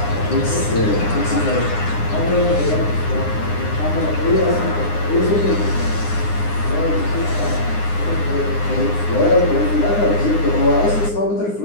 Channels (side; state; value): right; late; 9.7 ms